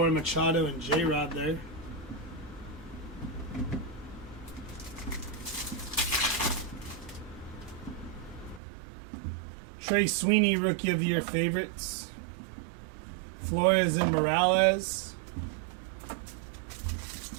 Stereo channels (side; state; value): left; drops out; at 8.6 s